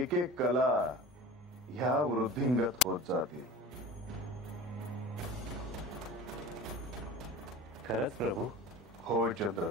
एक कला ह्या वृद्धिंगत होत जातील. खरंच प्रभू? होय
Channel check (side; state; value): both; normal; correlation 0.37